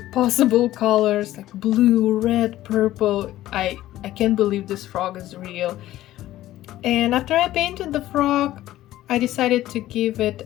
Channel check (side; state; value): right; quieter; 14.6 dB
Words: possible colors, like blue, red, purple. I can't believe this frog is real. And after I painted the frog, I decided to give